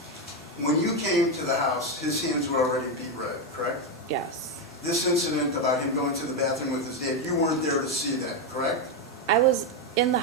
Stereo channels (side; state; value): both; normal; correlation 0.07